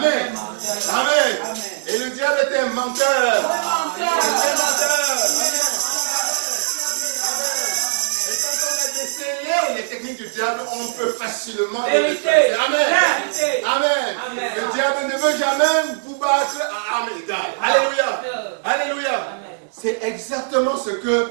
Amen. Et le diable est un menteur. Il est un menteur. Et quand on est des seigneurs les techniques du diable, on peut facilement les Vérité. détruire. Amen. Vérité. Amen. Amen. Le diable ne veut jamais vous battre à armes égales. Alléluia. Alléluia. Amen. C'est exactement ce que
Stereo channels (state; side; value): silent; left; 66 dB below the other